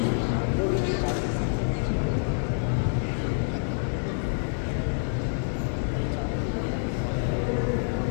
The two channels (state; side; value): silent; right; 60 dB below the other